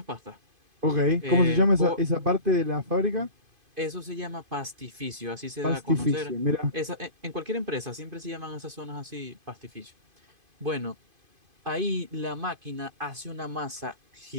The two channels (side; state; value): left; late; 2.5 ms